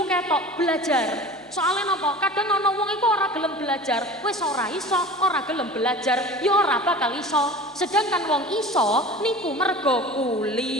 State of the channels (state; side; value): normal; both; correlation 0.38